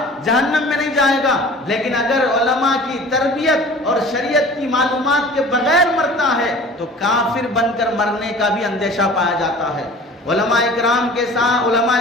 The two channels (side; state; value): both; normal; correlation 0.44